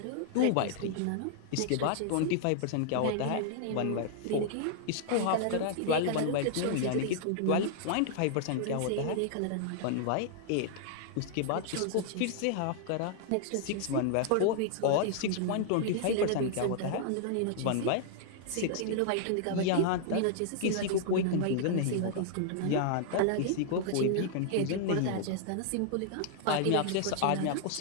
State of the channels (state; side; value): different; both; correlation -0.01